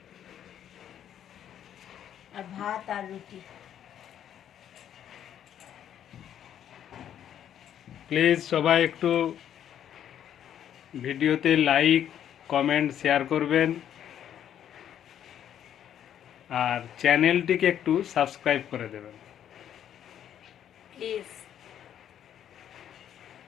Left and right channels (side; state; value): right; quieter; 10.0 dB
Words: আর ভাত আর রুটি। প্লিজ সবাই একটু ভিডিওতে লাইক, কমেন্ট, শেয়ার করবেন, আর চ্যানেলটিকে একটু সাবস্ক্রাইব করে দেবেন। প্লিজ।